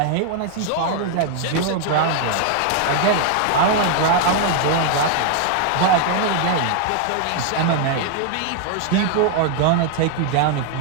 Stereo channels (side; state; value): both; different; correlation 0.00